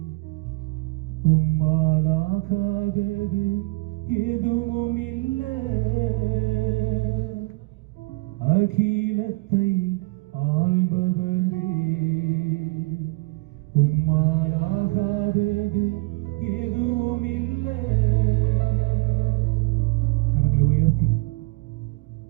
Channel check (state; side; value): quieter; left; 25.4 dB